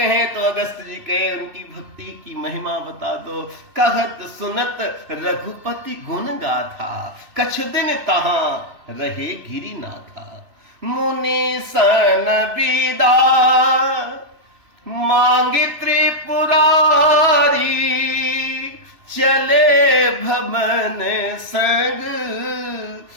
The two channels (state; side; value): late; left; 3.0 ms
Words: तो अगस्त जी कहे उनकी भक्ति की महिमा बता दो। कहत सुनत रघुपति गुण गाथा, कछ दिन तहां रहे गिरिनाथा। मुनि सन विदा मांगे त्रिपुरारी, चले भमन संग